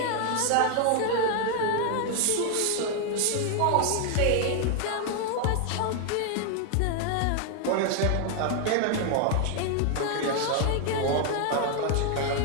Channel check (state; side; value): different; both; correlation 0.00